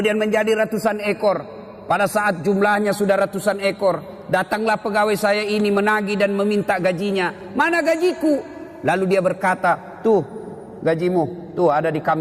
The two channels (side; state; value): both; identical; correlation 1.00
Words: menjadi ratusan ekor. Pada saat jumlahnya sudah ratusan ekor, datanglah pegawai saya ini menagih dan meminta gajinya. Mana gajiku? Lalu dia berkata, tuh gajimu, tuh ada di